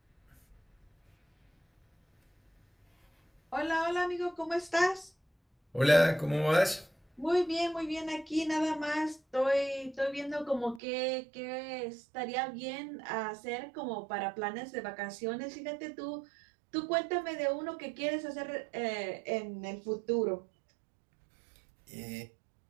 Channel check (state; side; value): drops out; left; at 10.8 s